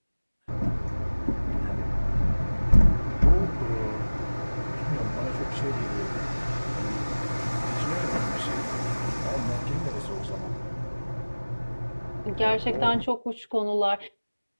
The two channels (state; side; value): inverted; both; correlation -1.00